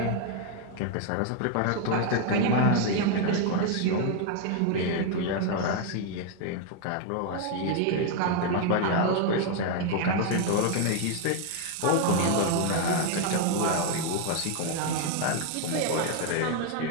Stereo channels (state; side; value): different; both; correlation 0.01